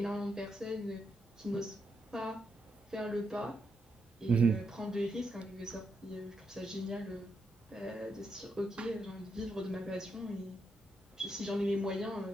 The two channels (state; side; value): normal; both; correlation 0.82